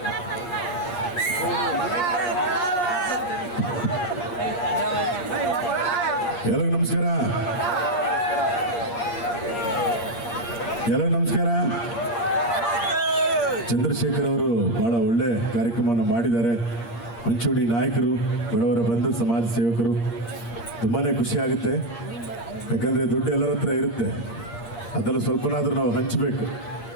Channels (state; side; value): late; right; 8.5 ms